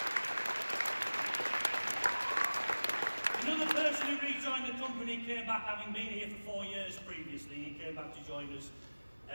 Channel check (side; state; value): both; inverted; correlation -1.00